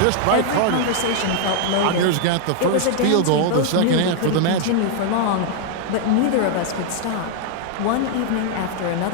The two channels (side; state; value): both; different; correlation 0.00